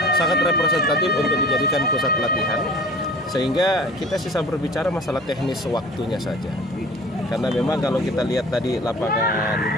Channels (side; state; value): both; normal; correlation 0.44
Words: sangat representatif untuk dijadikan pusat latihan, sehingga kita sisa berbicara masalah teknis waktunya saja. Karena memang kalau kita lihat tadi lapangan,